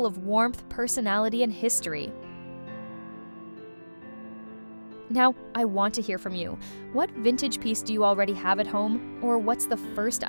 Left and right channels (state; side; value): inverted; both; correlation -1.00